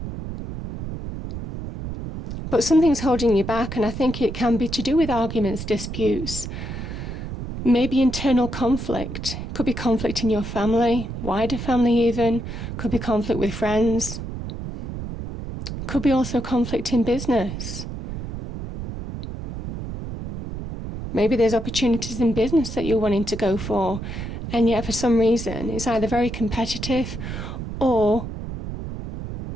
But something's holding you back, and I think it can be to do with arguments, disputes, maybe internal conflict. Could be conflict in your family, wider family even. Could be conflict with friends. Could be also conflict in business. Maybe there's opportunities in business that you're wanting to go for, and yet for some reason it's either very competitive or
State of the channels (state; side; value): noise; right; rumble, 7 dB below the sound